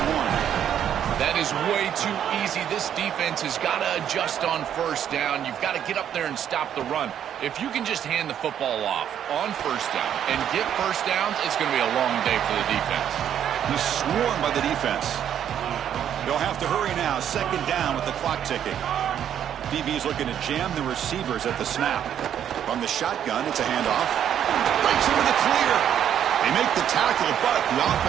That is way too easy. This defense has got to adjust on 1st down. You've got to get up there and stop the run. If you can just hand the football off on 1st down and get 1st downs, it's going to be a long day for the defense. He's swarmed by the defense. They'll have to hurry now. 2nd down with the clock ticking. DB's looking to jam the receivers at the snap. From the shotgun, it's a handoff. Breaks into the clear. They make the tackle, but the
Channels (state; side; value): quieter; left; 9.7 dB